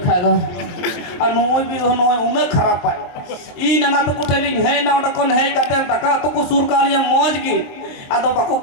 खाए दो और नोई भी नोई उन्हें खराब पाए ई नना तो कुटेलिंग है ना ओटा कौन है कते तका तो को सुर कालिया मौज की atau baku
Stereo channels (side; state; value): right; late; 23 ms